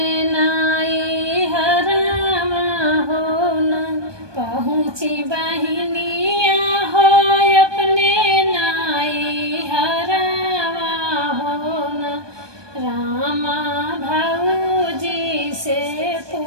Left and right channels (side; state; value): left; late; 1.2 ms